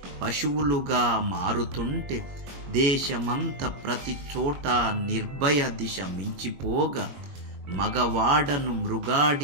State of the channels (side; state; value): left; late; 22 ms